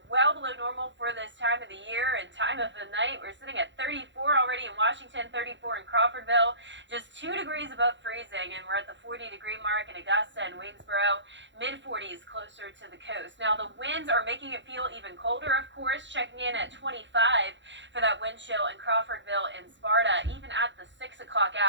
well below normal for this time of the year and time of the night. We're sitting at 34 already in Washington, 34 in Crawfordville, just 2 degrees above freezing, and we're at the 40-degree mark in Augusta and Waynesboro, mid-40s closer to the coast. Now, the winds are making it feel even colder, of course, checking in at 25 for that wind chill in Crawfordville and Sparta, even at the 6 o'clock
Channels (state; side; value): late; left; 0.53 ms